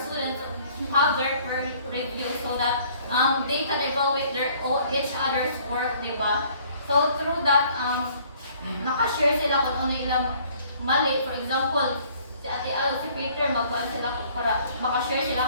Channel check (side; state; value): both; inverted; correlation -0.58